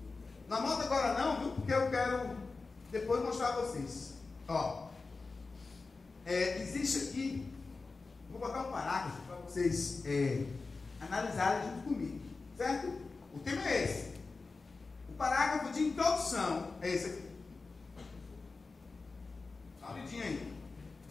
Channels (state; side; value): quieter; right; 4.0 dB